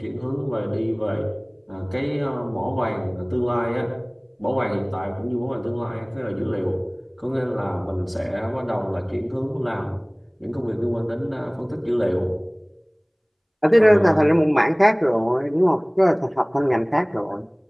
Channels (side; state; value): both; identical; correlation 1.00